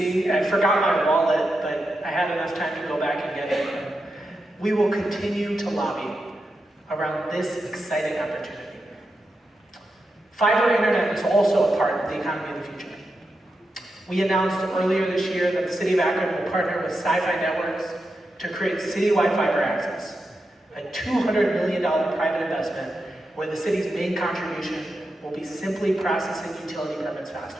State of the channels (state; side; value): normal; both; correlation 0.88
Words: I forgot my wallet, but I had enough time to go back and get it. And we will continue to lobby around this exciting opportunity. Fiber internet is also a part of the economy of the future. We announced earlier this year that the City of Akron will partner with Sci-Fi Networks to create citywide fiber access, a $200 million private investment where the city's main contribution will be simply processing utility permits faster.